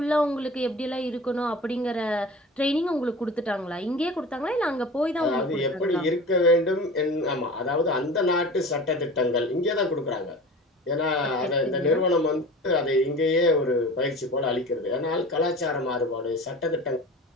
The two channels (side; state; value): both; normal; correlation 0.37